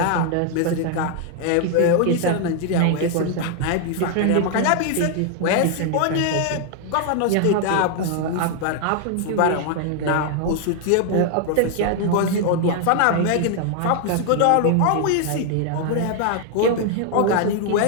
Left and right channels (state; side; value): different; both; correlation 0.00